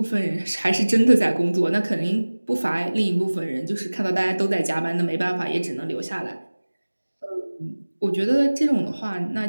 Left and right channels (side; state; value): both; inverted; correlation -1.00